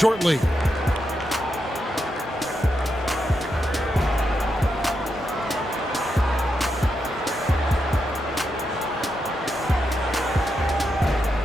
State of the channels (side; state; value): both; normal; correlation 0.84